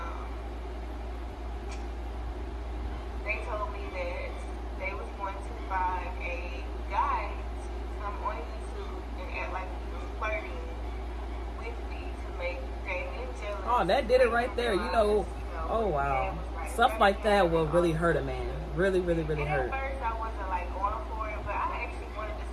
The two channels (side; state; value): both; identical; correlation 1.00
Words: they told me that they was going to find a guy to come on YouTube and act like he was flirting with me to make Damien jealous. Oh, that did it right there. You know, oh wow. Stuff like that will really hurt a man. Really, really, really hurt. At first I wasn't like going for it, but I actually wanted to